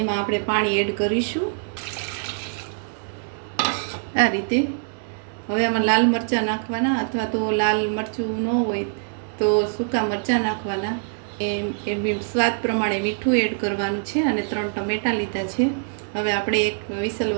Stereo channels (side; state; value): left; silent; digital silence